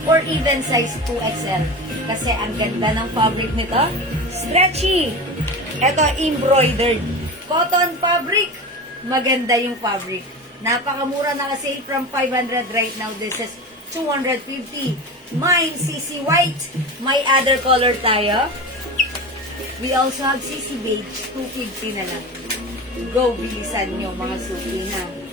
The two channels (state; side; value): normal; both; correlation 0.28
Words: or even size 2XL. Kasi ang ganda ng fabric nito. Stretchy. Ito, embroidered. Cotton fabric. Maganda yung fabric. Napakamura na kasi from 500 right now. This is 250. Mine, CC White. May other color tayo. We also have CC Beige, 250 na lang. Go, bilisan nyo mga suki na.